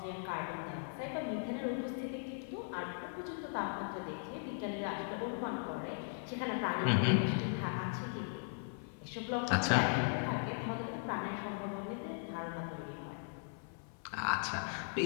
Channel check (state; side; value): silent; right; 52 dB below the other